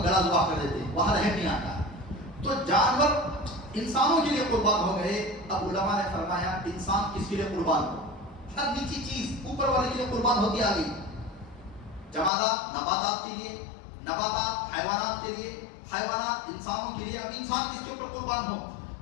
گلا ذبح کر دیتے ہیں، وہاں رحم نہیں آتا. تو جانور انسانوں کے لیے قربان ہو گئے. اب علماء نے فرمایا انسان کس کے لیے قربان ہو؟ ہر نیچی چیز اوپر والے کے لیے قربان ہوتی آ گئی. جمادات نباتات کے لیے، نباتات حیوانات کے لیے، حیوانات انسانوں کے لیے. اب انسان کس کے اوپر قربان ہو؟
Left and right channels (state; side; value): drops out; right; at 12.3 s